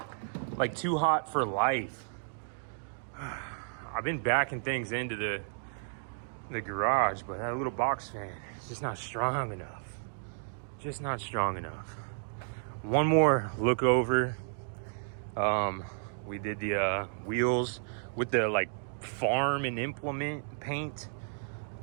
Like too hot for life. I've been backing things into the garage, but that little box fan is just not strong enough. Just not strong enough. One more look over. We did the wheels with the like farm and implement paint.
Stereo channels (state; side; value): silent; left; digital silence